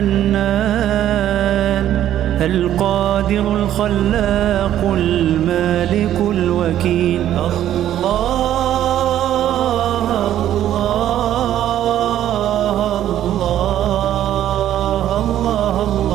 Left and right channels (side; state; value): left; quieter; 11.7 dB